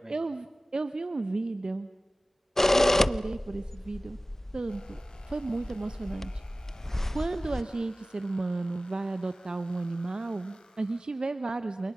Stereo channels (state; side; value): normal; both; correlation 0.97